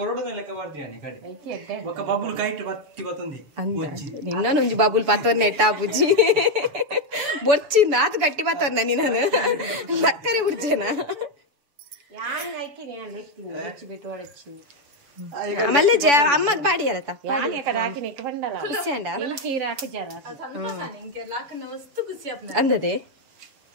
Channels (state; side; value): late; left; 7.0 ms